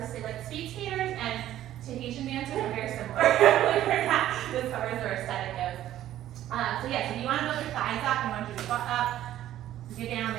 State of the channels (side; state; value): left; quieter; 12.8 dB